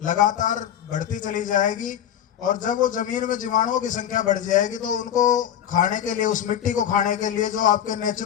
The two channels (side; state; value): right; quieter; 10.1 dB